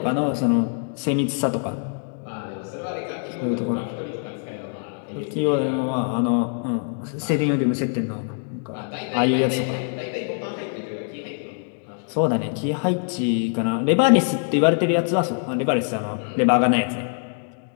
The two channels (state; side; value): silent; right; 63 dB below the other